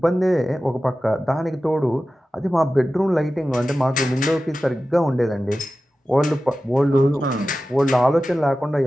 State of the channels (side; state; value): both; normal; correlation 0.94